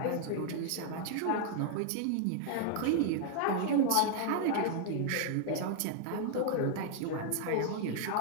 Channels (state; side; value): different; both; correlation -0.01